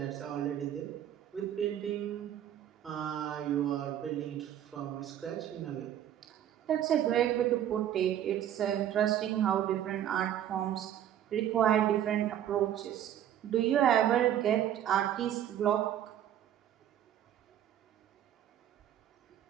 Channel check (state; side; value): quieter; left; 10.8 dB